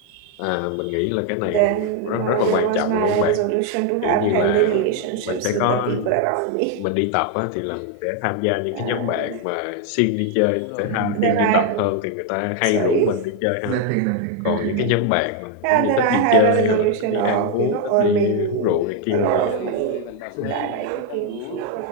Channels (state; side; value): different; both; correlation 0.01